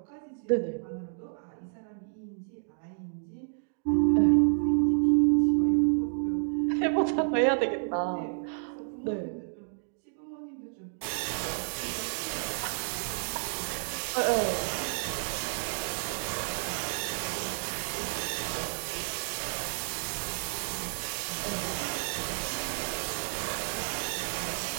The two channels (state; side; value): silent; left; digital silence